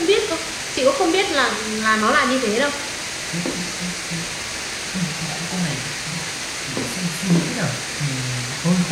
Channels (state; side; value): identical; both; correlation 1.00